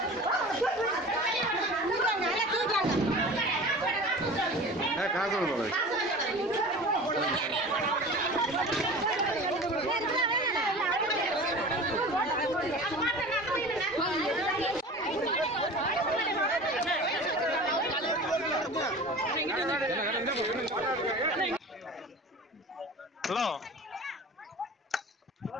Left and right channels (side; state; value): both; normal; correlation 0.37